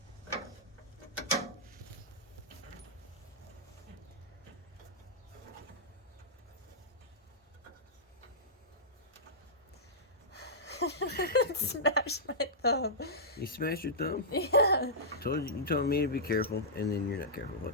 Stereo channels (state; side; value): normal; both; correlation -0.14